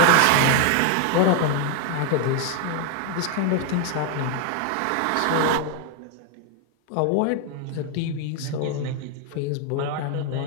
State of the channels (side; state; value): both; different; correlation 0.01